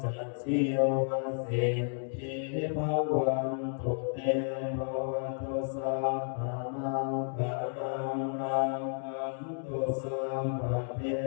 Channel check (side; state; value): right; silent; 56 dB below the other